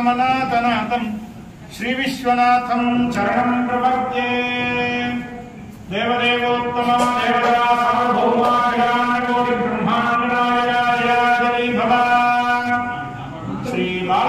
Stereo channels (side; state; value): both; identical; correlation 1.00